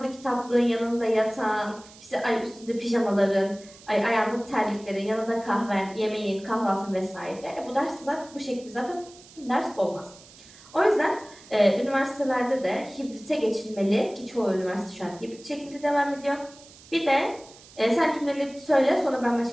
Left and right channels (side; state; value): right; noise; hiss, 22 dB below the sound